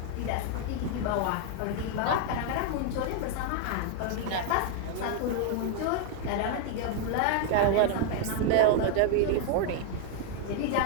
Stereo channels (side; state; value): both; different; correlation 0.00